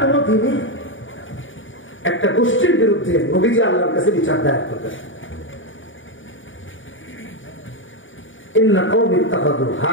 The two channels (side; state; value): right; late; 0.57 ms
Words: দিনে একটা গোষ্ঠীর বিরুদ্ধে নবীজি আল্লাহর কাছে বিচার দায়ের করবেন।